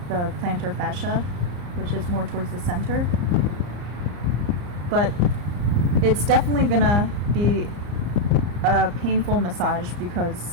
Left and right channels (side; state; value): left; late; 34 ms